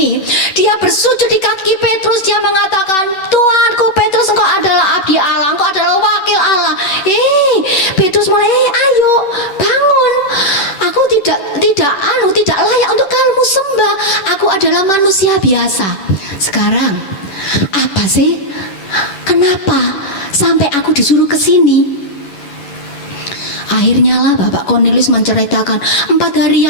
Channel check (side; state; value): right; late; 11 ms